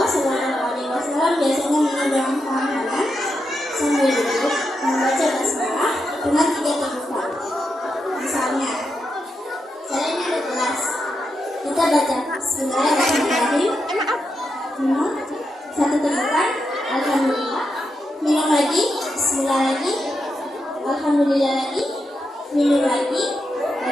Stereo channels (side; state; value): both; normal; correlation 0.85